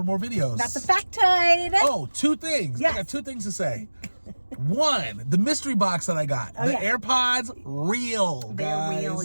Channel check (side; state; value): both; inverted; correlation -1.00